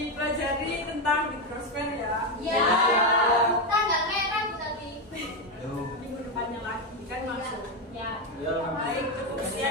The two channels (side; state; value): both; normal; correlation 0.08